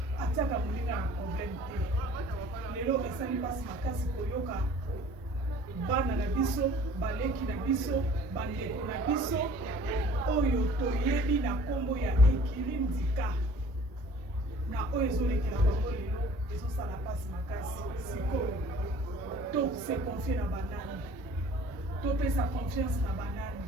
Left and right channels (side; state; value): both; normal; correlation 0.51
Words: atiaka moninga na problème te. Lelo esa lui passe makasi koyoka bana na biso, baleki na biso, bandeko na biso, oyo toyebi na kombo ya Ekiri Ndika. Na oyo ezolekela bango lelo, ezosala pasi makasi, sikoyo. To se confier na banani. To pesa confiance na banani.